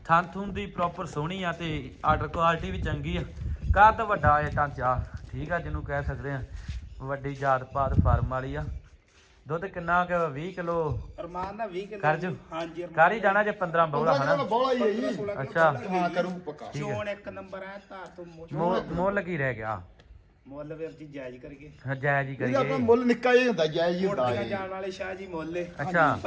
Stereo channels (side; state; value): both; identical; correlation 1.00